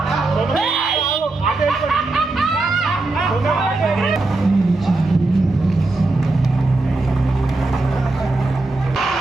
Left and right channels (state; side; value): quieter; left; 3.1 dB